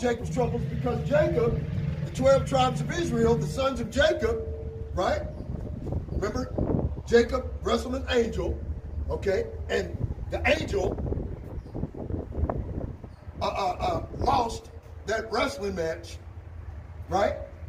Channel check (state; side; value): identical; both; correlation 1.00